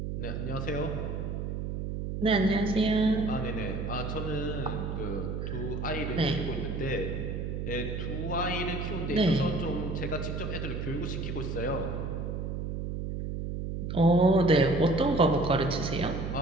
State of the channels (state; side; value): noise; right; hum, 4 dB below the sound